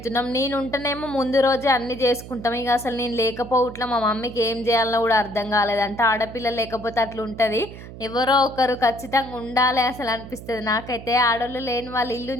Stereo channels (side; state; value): right; noise; hum, 14 dB below the sound